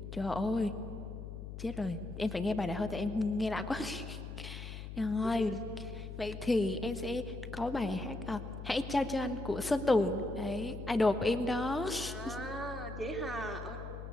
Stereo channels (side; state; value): left; noise; hum, 9 dB below the sound